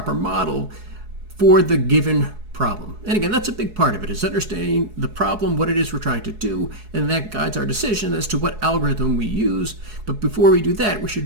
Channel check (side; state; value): left; late; 4.7 ms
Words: model for the given problem. And again, that's a big part of it, is understanding the problem, what it is we're trying to do, and that guides our decision as to what algorithm we use. But before we do that, we